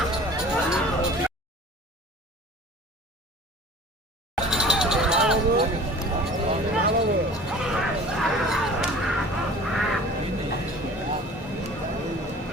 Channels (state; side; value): normal; both; correlation 0.44